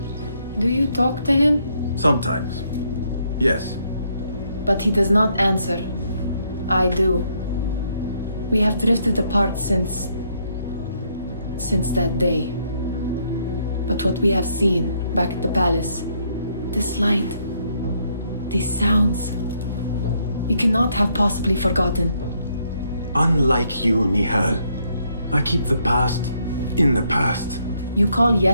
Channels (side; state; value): both; inverted; correlation -0.73